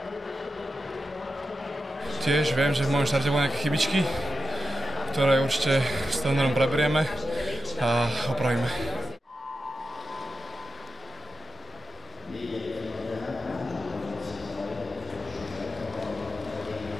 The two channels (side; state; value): both; normal; correlation 0.90